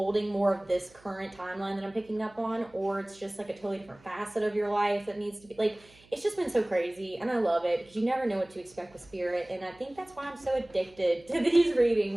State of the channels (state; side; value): noise; right; hum, 27 dB below the sound